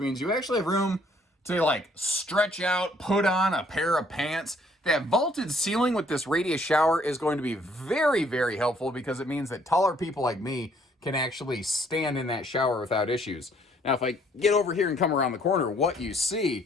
you actually have room to like stretch out, put on a pair of pants. That vaulted ceiling with this radius shower is going to be very, very helpful, because it means that taller people like me can actually stand in that shower without issues. Now, if I get over here and come around the corner, what you see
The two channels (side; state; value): both; normal; correlation 0.63